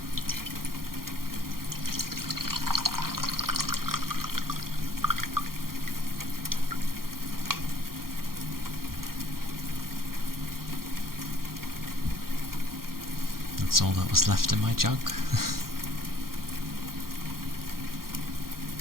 That's all that was left in my jug.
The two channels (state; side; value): late; left; 0.92 ms